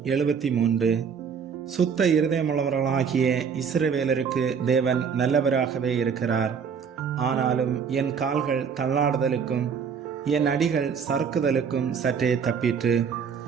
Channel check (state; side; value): quieter; left; 6.6 dB